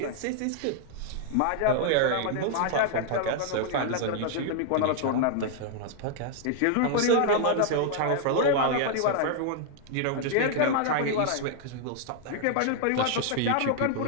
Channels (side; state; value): both; different; correlation -0.01